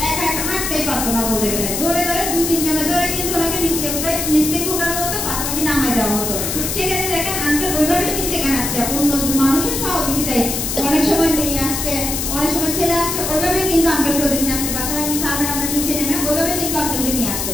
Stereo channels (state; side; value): noise; left; hiss, 2 dB below the sound